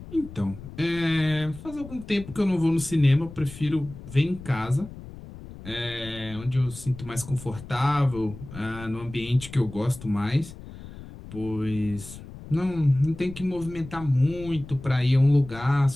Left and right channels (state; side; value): noise; left; rumble, 15 dB below the sound